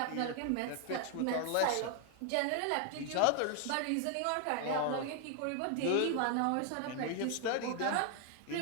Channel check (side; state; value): both; different; correlation 0.00